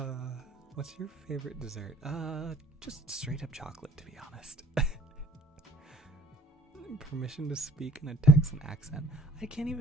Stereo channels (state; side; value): normal; both; correlation 0.61